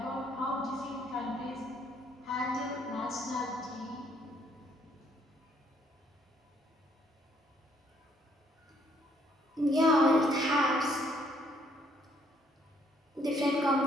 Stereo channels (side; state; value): both; normal; correlation 0.67